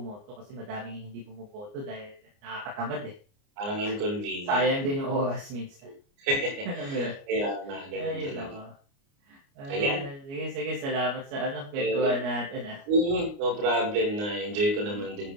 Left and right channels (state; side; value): late; left; 29 ms